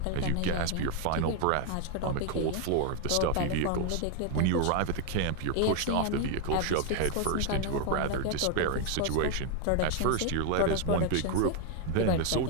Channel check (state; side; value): different; both; correlation 0.01